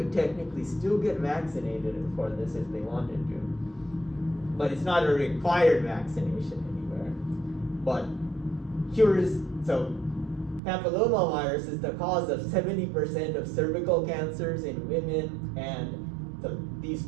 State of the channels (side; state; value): left; drops out; at 10.6 s